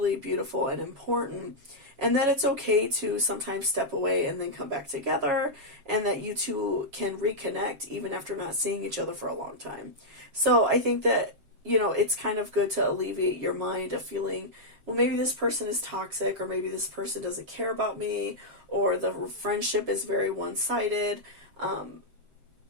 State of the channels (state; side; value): late; left; 7.3 ms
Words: beautiful and important, and that it's okay to sometimes step away and then come back together, and that you two can reconnect even after not seeing each other for a long time. So I think that, it's kind of good to alleviate your mind of feeling, well, maybe this person is toxic, or maybe this person doesn't care about me, or the friendship is very one-sided.